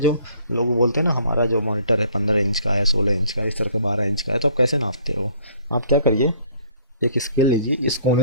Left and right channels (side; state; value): both; inverted; correlation -0.59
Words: लोग बोलते हैं ना हमारा जो मॉनिटर है 15 इंच का है, 16 इंच का, इस तरह का 12 इंच का है, तो आप कैसे नापते हो? आप क्या करिए, एक स्केल लीजिए, इस कोने